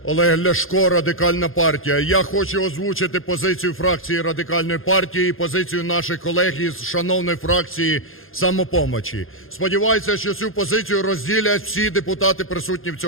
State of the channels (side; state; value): right; late; 0.60 ms